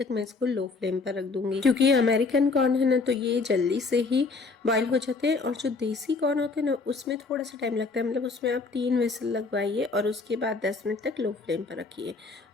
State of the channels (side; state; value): right; quieter; 4.1 dB